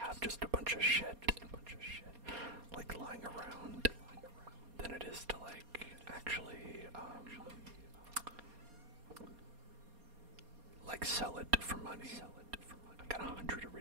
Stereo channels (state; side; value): late; left; 4.2 ms